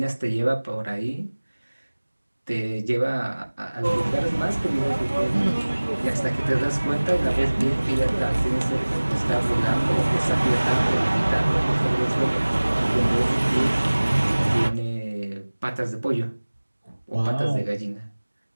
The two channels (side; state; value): both; inverted; correlation -1.00